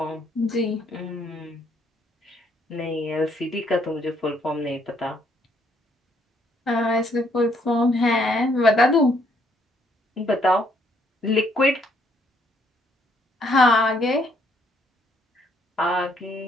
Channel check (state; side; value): normal; both; correlation 0.69